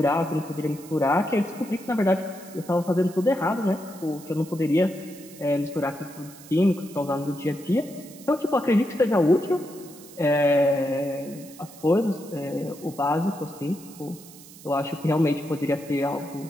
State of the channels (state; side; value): noise; right; hiss, 19 dB below the sound